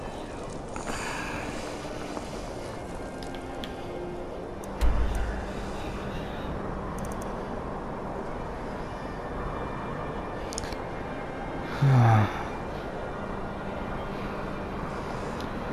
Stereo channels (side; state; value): both; identical; correlation 1.00